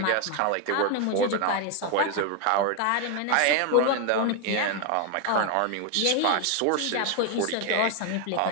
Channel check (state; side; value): different; both; correlation 0.01